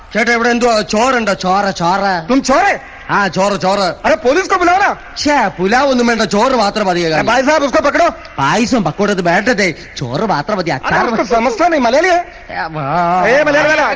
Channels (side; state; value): both; identical; correlation 1.00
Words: ചേട്ടാ, ഇവിടെ എന്തോ ചോറുണ്ടോ? ചോറ് ചോറ്. ചോറ്. അരെ പോലീസ് ബുലാവനാ? പുലാവ് ഒന്നും വേണ്ട, ചോറ് മാത്രം മതി. പായസം പക്കോടത് വേണ്ടതേ, ചോറ് മാത്രം മതി. സമസ്ത മലയാളി.